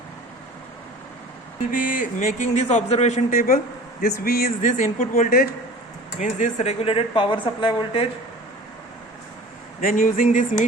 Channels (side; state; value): both; normal; correlation 0.42